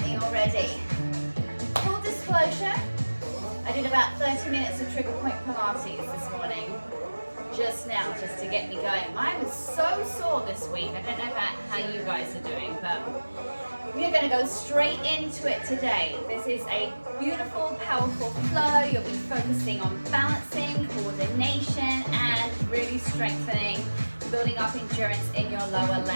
me already. Full disclosure, I did about 30 minutes of trigger point Pilates this morning, just now, just to get me going. Mine was so sore this week. I don't know about how you guys are doing, but we're going to go straight into it today. This is a beautiful, powerful flow. You'll be focusing on balancing, coordination, and really strengthening, building up endurance in your lower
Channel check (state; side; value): inverted; both; correlation -1.00